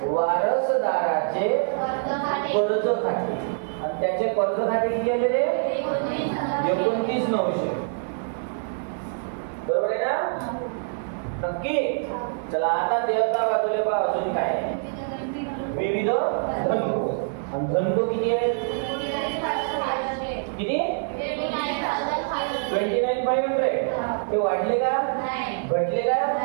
वारसदाराचे कर्ज खाते. आणि त्याचे कर्ज खाते किती आले रे? 29,900. बरोबर आहे ना? नक्की. चला आता देवता बाजूला पहा अजून काय आहे. विविध धनको. आणि धनको किती आहेत? किती? 29,500. ते वाढले का? घटले का?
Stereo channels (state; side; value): silent; left; digital silence